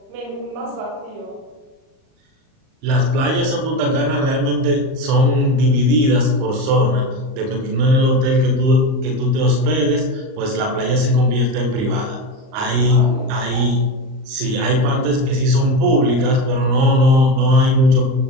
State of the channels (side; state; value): left; late; 38 ms